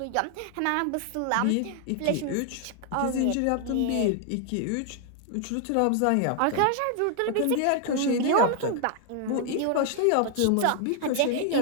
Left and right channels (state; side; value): different; both; correlation 0.00